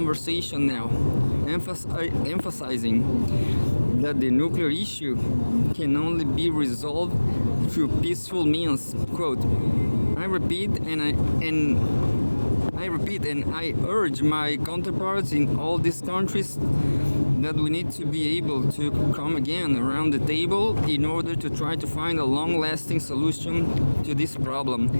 now, emphasizing that the nuclear issue can only be resolved through peaceful means. Quote, I repeat and I urge my counterparts in all these countries that we need to be able to come again around the table in order to try to find a long-lasting solution to this problem,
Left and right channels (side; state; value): both; inverted; correlation -1.00